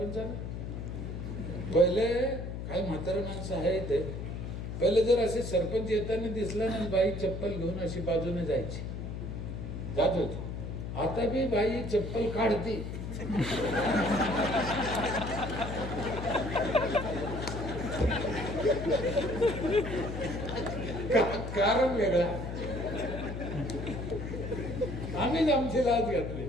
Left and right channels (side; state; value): left; noise; hum, 6 dB below the sound